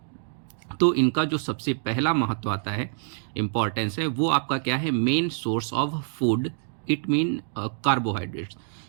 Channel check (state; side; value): silent; left; digital silence